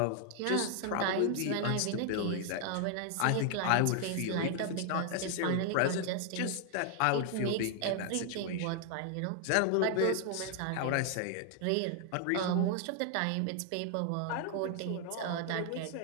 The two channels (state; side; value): different; both; correlation 0.00